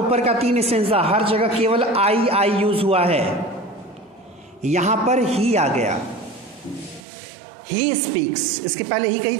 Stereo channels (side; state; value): left; drops out; at 7.0 s